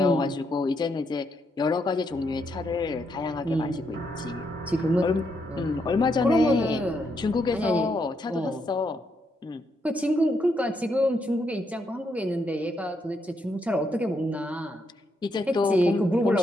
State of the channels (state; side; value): normal; both; correlation 0.78